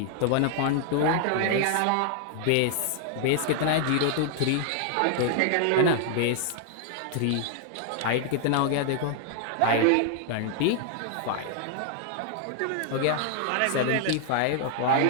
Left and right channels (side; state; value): both; different; correlation 0.00